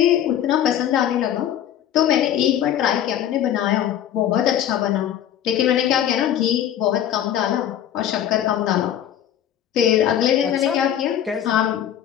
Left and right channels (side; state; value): right; quieter; 10.6 dB